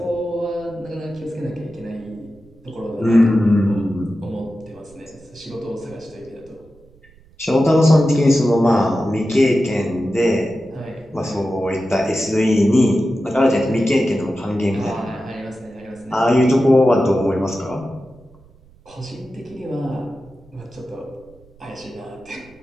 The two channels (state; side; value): noise; right; rumble, 27 dB below the sound